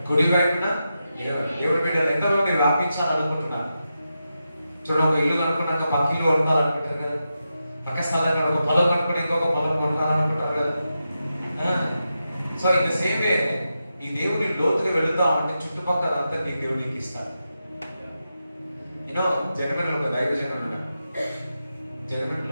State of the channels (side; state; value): both; inverted; correlation -0.89